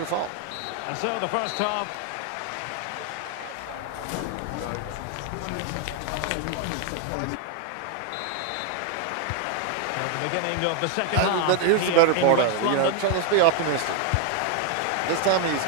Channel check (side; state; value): both; different; correlation 0.00